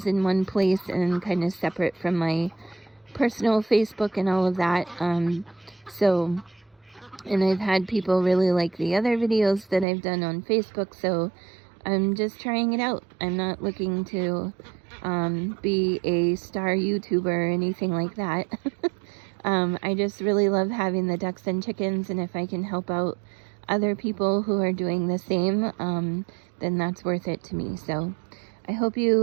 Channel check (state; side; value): drops out; left; at 9.9 s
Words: in one place and kind of separate from my personal Facebook and all of that. And I've had people really like the other videos that I've done on Facebook, so I'm just trying it out. I'm not looking to be a star YouTuber or anything like that. I just really love having the ducks and chickens, and if I can help out other people who are doing the same, then that's worth it to me. So I hope